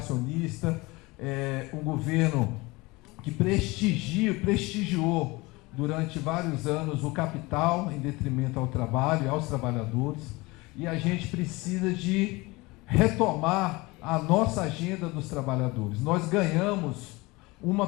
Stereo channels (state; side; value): quieter; right; 23.1 dB